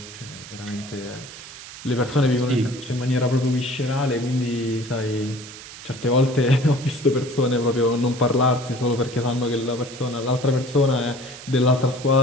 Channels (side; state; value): right; noise; hiss, 15 dB below the sound